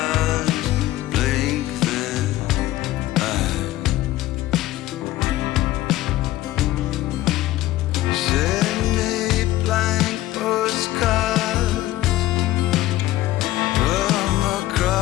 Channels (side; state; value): right; quieter; 15.9 dB